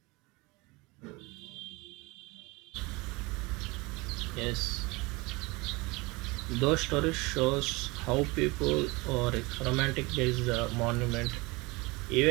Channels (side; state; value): left; quieter; 24.5 dB